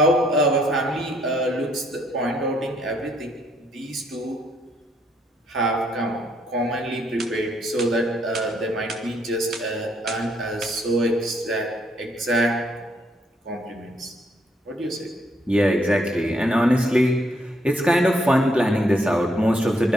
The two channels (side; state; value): both; normal; correlation 0.70